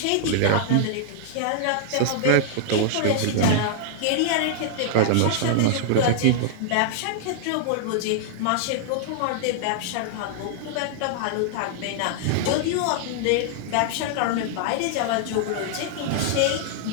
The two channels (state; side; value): different; both; correlation -0.01